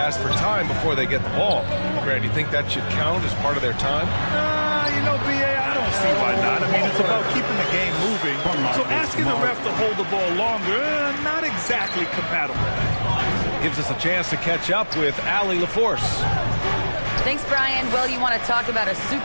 for time before they get the ball. Grant, do you think that should count as part of their time? You know, B.A., I don't see why not. I mean, it's about keeping the game moving. So asking the ref to hold the ball longer, not exactly compatible. Gives us a chance to catch up with Allie LaForce. Thanks, Brian. Well, you want to talk about a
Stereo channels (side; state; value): both; inverted; correlation -1.00